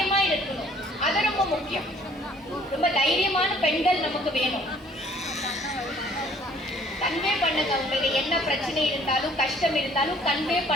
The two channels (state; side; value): normal; both; correlation 0.58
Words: இருக்கணும். அது ரொம்ப முக்கியம். ரொம்ப தைரியமான பெண்கள் நமக்கு வேணும். கன்வே பண்ணுங்க. உங்களுக்கு என்ன பிரச்சனை இருந்தாலும் கஷ்டம் இருந்தாலும் கன்வே